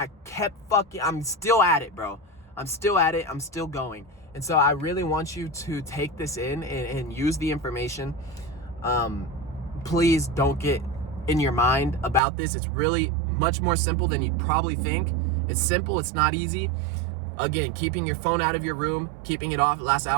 kept I'm still at it, bro. I'm still at it. I'm still going. And so I really want you to take this in and use the information. Please don't get in your mind about this. It's really much more simple than you'd probably think. It's simple. It's not easy. Again, keeping your phone out of your room, keeping it off last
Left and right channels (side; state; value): left; drops out; at 12.2 s